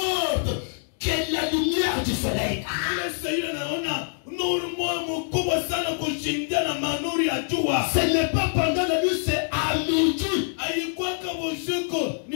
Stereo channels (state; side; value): silent; right; digital silence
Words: que la lumière du soleil. Ile Saidi anaona nuru moja mkubwa sana kushindia na manuri ya jua. Ce n'est pas pendant la nuit, c'est à midi. Haikuwa kama usiku